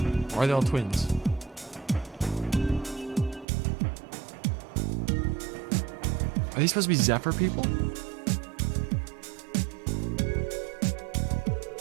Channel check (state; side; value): drops out; left; at 3.5 s